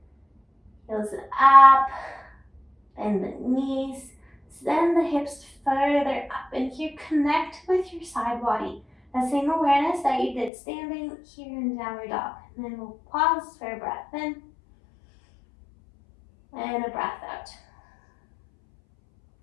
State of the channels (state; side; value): drops out; right; at 10.5 s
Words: Heels up, bend the knees, send the hips further up, and here connect with your side body. That same awareness that you did standing here in downward dog. And then we'll pause for a breath in and a breath out.